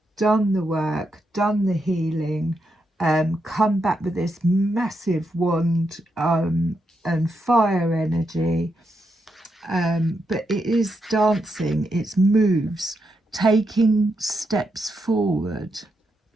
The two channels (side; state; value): both; normal; correlation 0.83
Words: done the work, done the healing, come back with this massive wand and fire energy. But it is dancing, it's moves, taking steps forward.